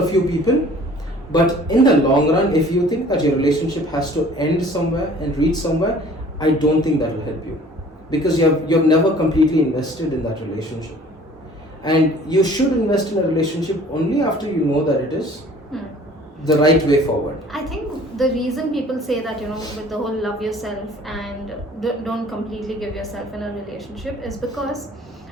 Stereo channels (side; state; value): both; normal; correlation 0.51